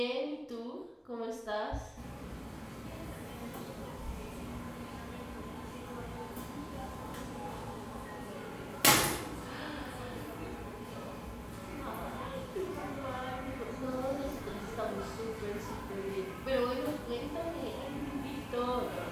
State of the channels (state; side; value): identical; both; correlation 1.00